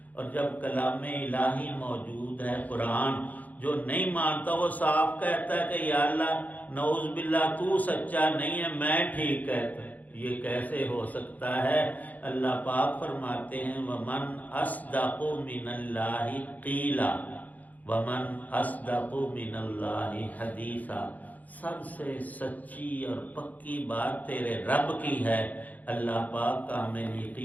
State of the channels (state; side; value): late; right; 0.079 ms